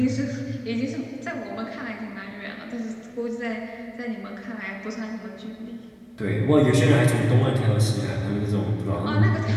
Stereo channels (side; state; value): both; identical; correlation 1.00